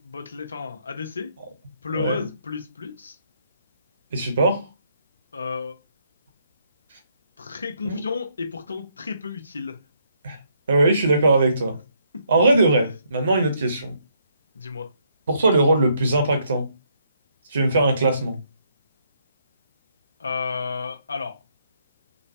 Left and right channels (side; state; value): both; inverted; correlation -0.72